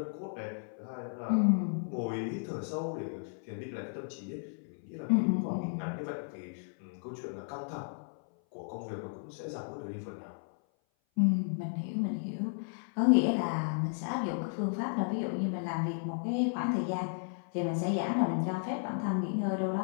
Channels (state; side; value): silent; right; 55 dB below the other